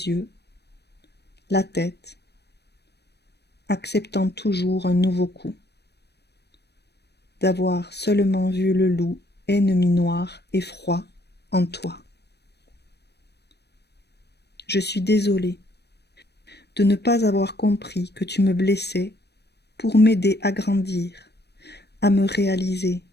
yeux, la tête, acceptant toujours un nouveau coup, d'avoir seulement vu le loup ennemi noir et froid en toi. Je suis désolée de ne pas avoir compris que tu me blessais pour m'aider à grandir, à me réaliser,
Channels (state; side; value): late; right; 0.48 ms